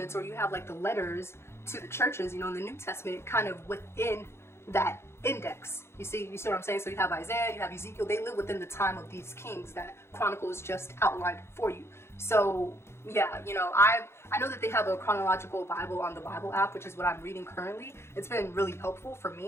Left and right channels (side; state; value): right; late; 0.12 ms